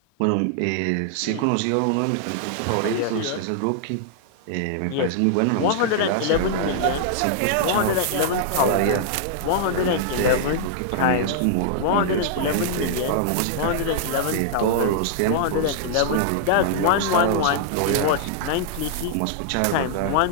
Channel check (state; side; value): different; both; correlation -0.01